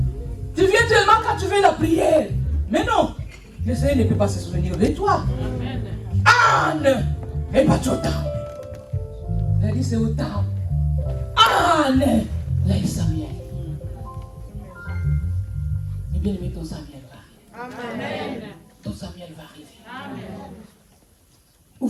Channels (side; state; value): both; identical; correlation 1.00